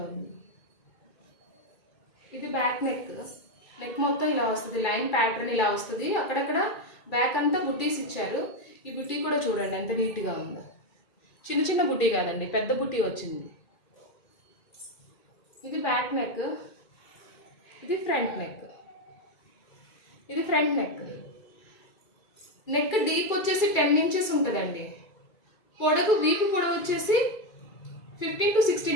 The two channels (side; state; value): right; late; 2.3 ms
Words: ఉంది. ఇది బ్యాక్ నెక్. నెక్ మొత్తం ఇలా వస్తుంది, లైన్ ప్యాటర్న్ ఇలా వస్తుంది. అక్కడక్కడ బ్యాక్ అంతా బుట్టీస్ ఇచ్చారు. ఈ బుట్టీ కూడా చూడండి ఎంత నీట్గా ఉందో. చిన్న చిన్న బుట్టీ కాదండి, పెద్ద బుట్టీ వచ్చింది. ఇది బ్యాక్ నెక్, ఇది ఫ్రంట్ నెక్. ఇది ఫ్రంట్ నెక్. నెక్ డీప్ వచ్చేసి 10 ఇంచెస్ ఉంటుందండి. పొడవు, వీపు పొడవు వచ్చేసి 15 to